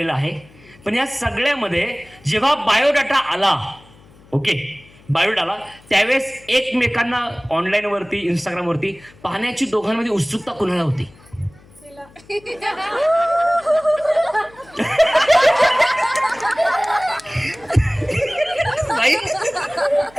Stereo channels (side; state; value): left; noise; hum, 26 dB below the sound